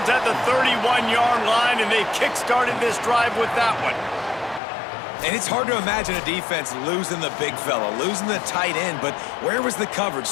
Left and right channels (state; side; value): drops out; right; at 4.6 s